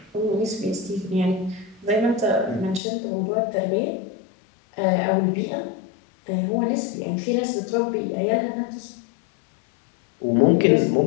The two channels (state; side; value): drops out; right; at 2.8 s